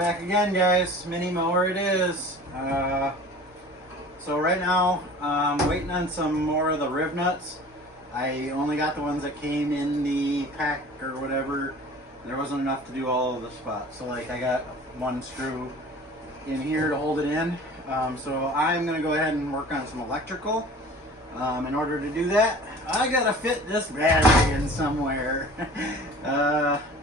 again, guys. Mini mower it is. So right now I'm waiting on some more of the rib nuts. I only got the ones that came in the pack or whatever. There wasn't enough to do all of the spots. So like I got one screw in here to hold it in. So I'm gonna go ahead and work on some electrical. In order to do that, I gotta fit this battery in somewhere. The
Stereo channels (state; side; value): normal; both; correlation 0.44